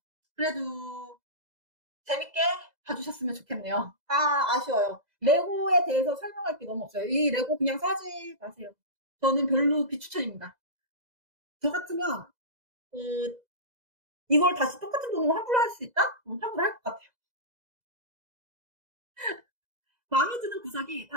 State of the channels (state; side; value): late; left; 2.0 ms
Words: 그래도 재밌게 봐주셨으면 좋겠네요. 아쉬워요. 레고에 대해서 설명할 게 너무 없어요. 이 레고 그냥 사지 마세요. 저는 별로 비추천입니다. 저 같으면 이걸 다시 똑같은 돈으로 환불을 할 수 있다? 환불을 할 것 같아요. 마음에 드는 구석이